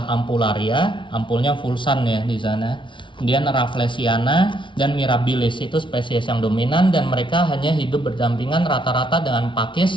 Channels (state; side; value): late; right; 0.24 ms